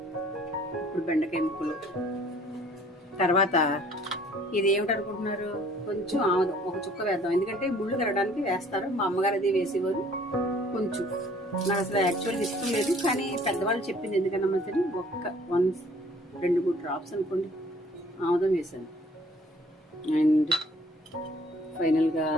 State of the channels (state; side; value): normal; both; correlation 0.56